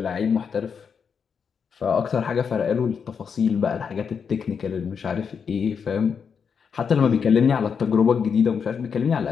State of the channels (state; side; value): quieter; right; 6.5 dB